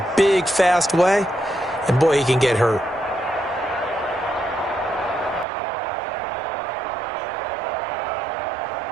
big, fast way. And, boy, he can get hurt.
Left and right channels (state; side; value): drops out; left; at 5.5 s